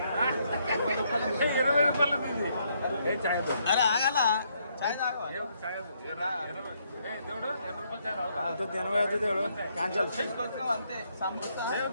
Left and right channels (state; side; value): inverted; both; correlation -0.72